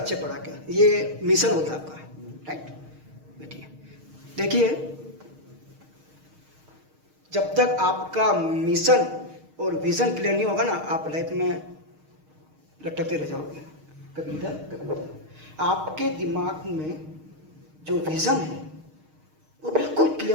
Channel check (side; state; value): left; late; 6.5 ms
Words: पढ़ाकर, ये मिशन होता है आपका, राइट। बैठिए, देखिए जब तक आपका मिशन और विजन क्लियर नहीं होगा ना, आप लाइफ में लटकते रह जाओगे, कभी इधर कभी उधर। आपके दिमाग में जो विजन है वो बिल्कुल